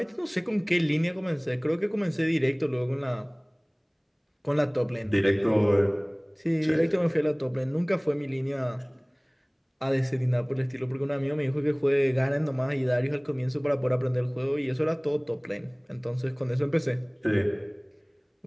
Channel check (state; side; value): identical; both; correlation 1.00